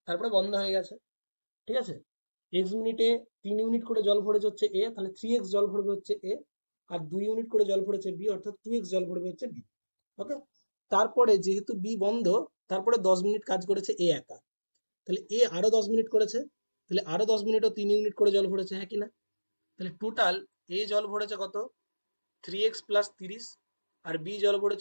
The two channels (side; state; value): both; inverted; correlation -1.00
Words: তারপরে বন্ধ হয়ে গেছে। ঠিক আছে, এক্স মিনিটে 3 ইউনিট করে জল ভরেছে হচ্ছে এ, তাহলে 3x জল ভরবে হচ্ছে এ, আর 2 ইউনিট করে জল ভরেছে বি, অর্থাৎ 2x জল ভরবে হচ্ছে বি। ওকে, তারপরে যেহেতু বি বন্ধ, তারপরে 10 মিনিট কাজ করেছে এ একা, তাহলে এ আরো 10 মিনিট করেছে, তাহলে আরো 10 মিনিটও 3 ইউনিট করে জল ভরেছে, হ্যাঁ কি না? তাহলে টোটাল এ জল ভরেছে কত? 3x প্লাস 30, আর বি জল